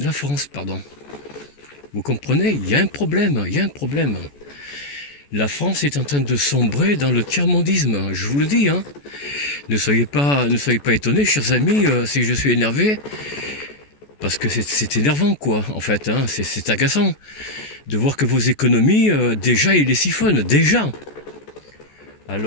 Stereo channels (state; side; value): late; right; 14 ms